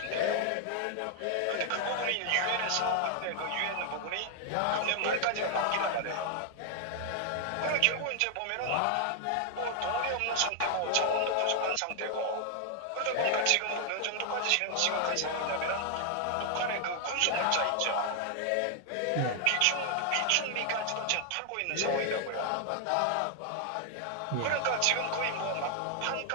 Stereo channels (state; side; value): different; both; correlation 0.00